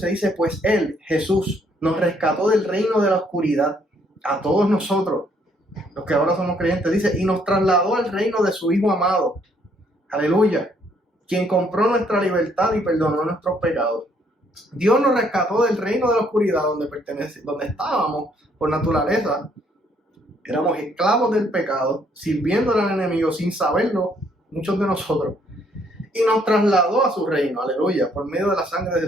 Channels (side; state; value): both; normal; correlation 0.68